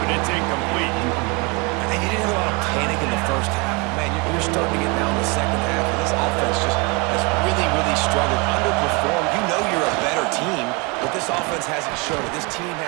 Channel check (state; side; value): quieter; left; 28.3 dB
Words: it's incomplete. And you didn't have a lot of panic in the first half. Man, you're starting to get down the second half, and this offense just has really, really struggled, underperformed. You know you're a better team, but this offense hasn't shown it. This team